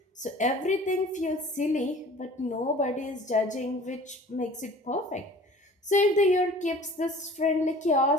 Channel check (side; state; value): both; normal; correlation 0.46